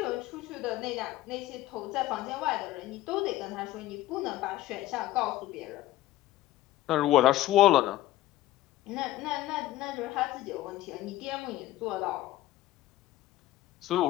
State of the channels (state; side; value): quieter; right; 15.3 dB